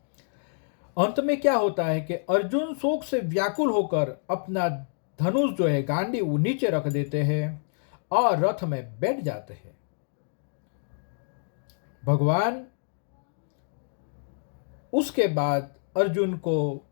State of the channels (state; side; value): silent; right; digital silence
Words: अंत में क्या होता है कि अर्जुन शोक से व्याकुल होकर अपना धनुष जो है, गांडी, वो नीचे रख देते हैं और रथ में बैठ जाते हैं। भगवान उसके बाद अर्जुन को